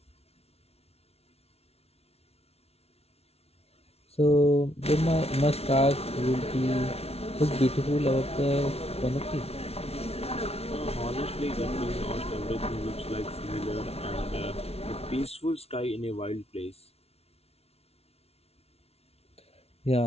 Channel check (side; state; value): right; late; 0.30 ms